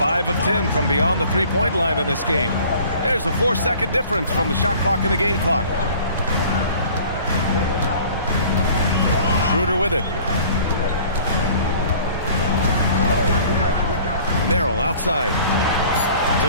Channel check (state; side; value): inverted; both; correlation -0.49